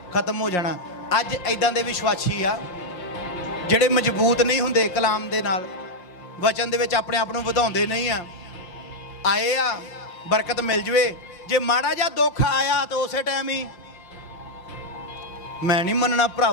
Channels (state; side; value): late; right; 5.6 ms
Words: ਖਤਮ ਹੋ ਜਾਣਾ। ਅੱਜ ਐਦਾਂ ਦੇ ਵਿਸ਼ਵਾਸੀ ਆ ਜਿਹੜੇ ਮਜ਼ਬੂਤ ਨਹੀਂ ਹੁੰਦੇ ਕਲਾਮ ਦੇ ਨਾਲ, ਵਚਨ ਦੇ ਵਿੱਚ ਆਪਣੇ ਆਪ ਨੂੰ ਵਧਾਉਂਦੇ ਨਹੀਂ ਆ। ਆਏ ਆ ਬਰਕਤ ਮਿਲ ਜਵੇ, ਜੇ ਮਾੜਾ ਜਿਹਾ ਦੁੱਖ ਆਇਆ ਤਾਂ ਉਸੇ ਟਾਈਮ ਹੀ ਮੈਂ ਨਹੀਂ ਮੰਨਣਾ